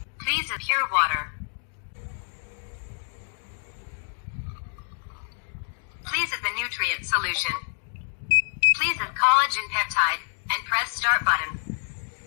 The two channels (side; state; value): right; silent; digital silence